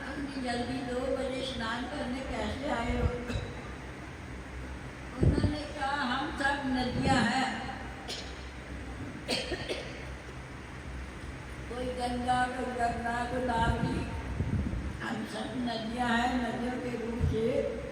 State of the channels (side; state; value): both; identical; correlation 1.00